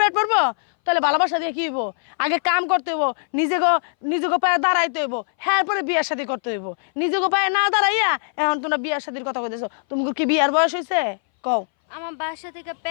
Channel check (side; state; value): right; silent; 61 dB below the other